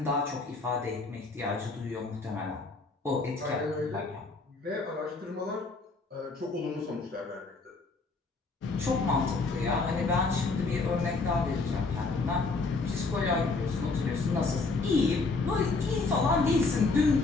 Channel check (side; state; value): right; quieter; 3.9 dB